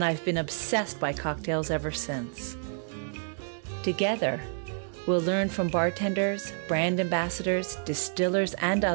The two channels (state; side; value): silent; left; digital silence